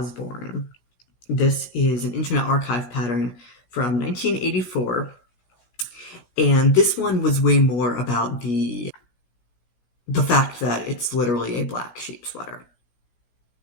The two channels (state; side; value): late; right; 17 ms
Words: This is an Internet Archive pattern from 1984, and this one was way more about the fact that it's literally a black sheep sweater.